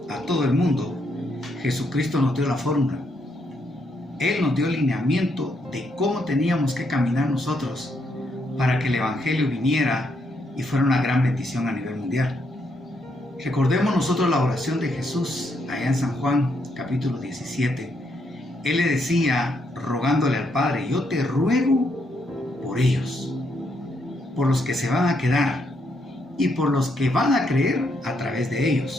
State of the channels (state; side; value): normal; both; correlation 0.76